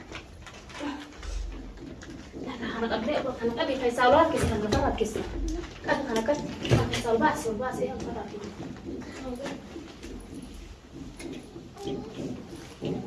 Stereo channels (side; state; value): both; identical; correlation 1.00